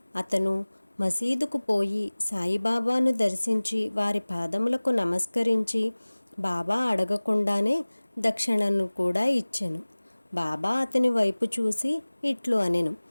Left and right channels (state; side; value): inverted; both; correlation -1.00